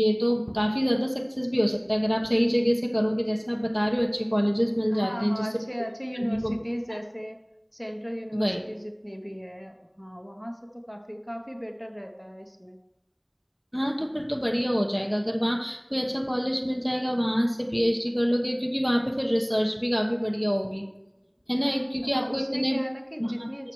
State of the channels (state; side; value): identical; both; correlation 1.00